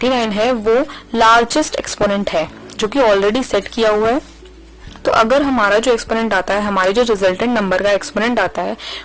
है वो लार्जेस्ट एक्सपोनेंट है जो कि ऑलरेडी सेट किया हुआ है। तो अगर हमारा जो एक्सपोनेंट आता है, हमारे जो रिजल्टेंट नंबर का एक्सपोनेंट आता है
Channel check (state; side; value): identical; both; correlation 1.00